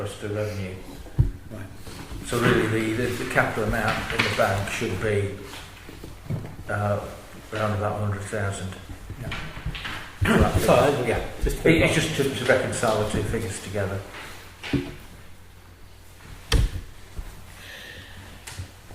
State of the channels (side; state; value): both; identical; correlation 1.00